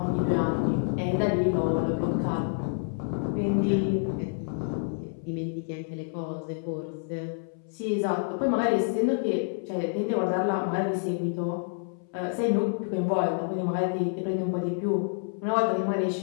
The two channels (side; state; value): right; silent; 59 dB below the other